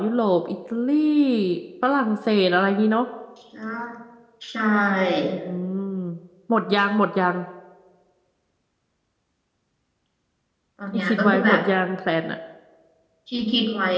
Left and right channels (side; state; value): both; identical; correlation 1.00